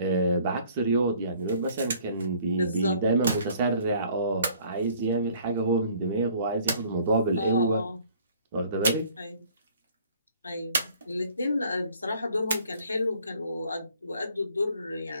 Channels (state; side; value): inverted; both; correlation -0.57